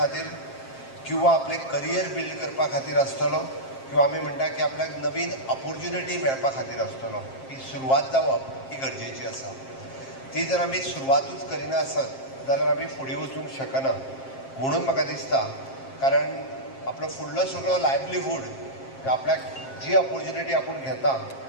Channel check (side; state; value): right; late; 7.5 ms